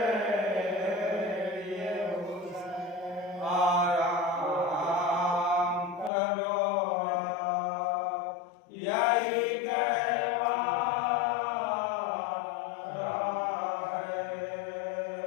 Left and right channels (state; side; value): drops out; right; at 6.1 s